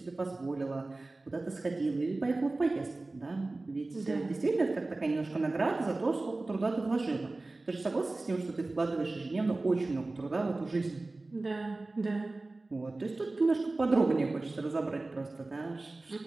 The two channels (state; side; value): quieter; left; 3.1 dB